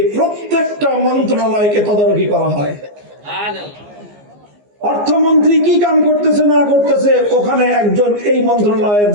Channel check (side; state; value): left; late; 14 ms